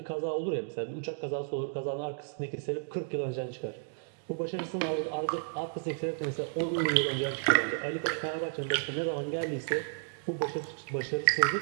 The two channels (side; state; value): left; silent; digital silence